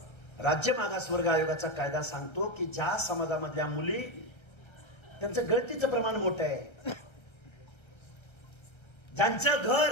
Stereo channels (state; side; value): late; right; 1.3 ms